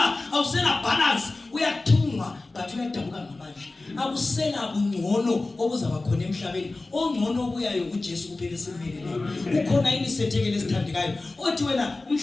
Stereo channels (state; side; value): quieter; right; 3.2 dB